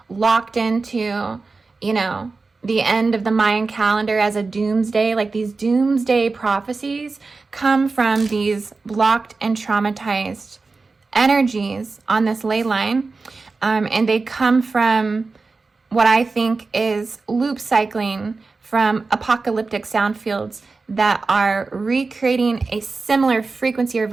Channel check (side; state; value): left; quieter; 4.0 dB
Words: locked into, the end of the Mayan calendar as a doomsday. Like these doomsday prophecies come from these blocked and traumatized energies on this ley line. And they come from what I think is loop cycling from apocalyptic sound fields that are recreating a similar frequency or